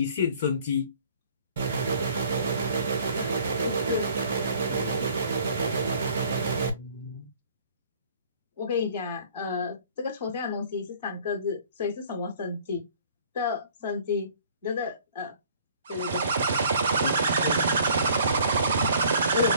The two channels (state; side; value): inverted; both; correlation -0.54